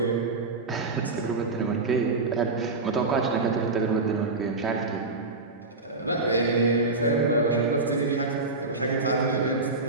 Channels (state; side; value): quieter; left; 3.5 dB